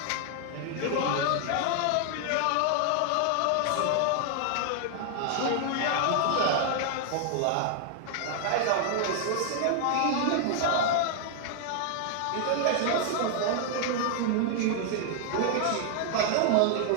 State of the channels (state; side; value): different; both; correlation 0.00